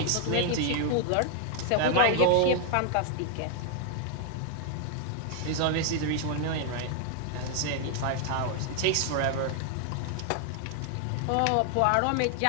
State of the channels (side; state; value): both; different; correlation 0.00